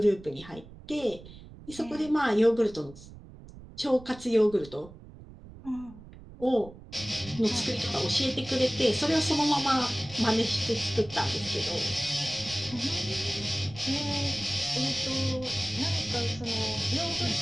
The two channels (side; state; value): right; noise; rumble, 18 dB below the sound